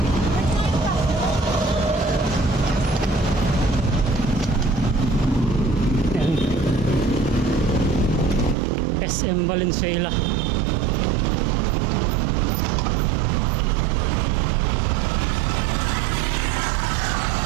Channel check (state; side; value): drops out; left; at 8.6 s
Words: Ayan. SM Valenzuela.